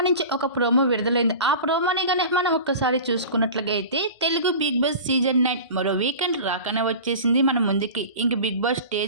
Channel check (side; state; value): both; inverted; correlation -0.35